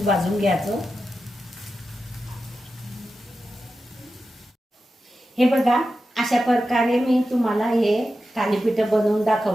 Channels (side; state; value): both; normal; correlation 0.91